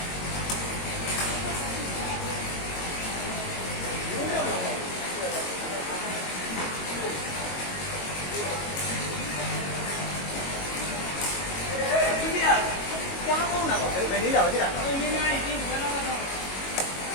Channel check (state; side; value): late; right; 22 ms